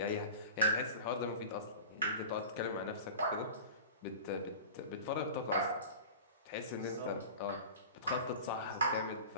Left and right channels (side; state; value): both; inverted; correlation -0.35